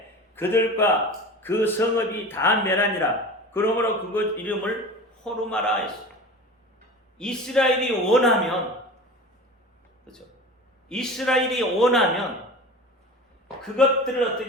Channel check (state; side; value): normal; both; correlation 0.35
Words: 그들과 그 성읍이 다 멸하니라. 그러므로 그것 이름을 호르마라 했어요. 이스라엘이 원하면, 그렇죠? 이스라엘이 원하면 그것들을